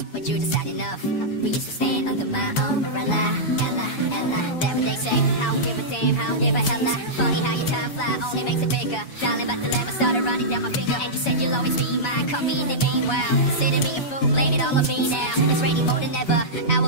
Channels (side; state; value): right; late; 7.0 ms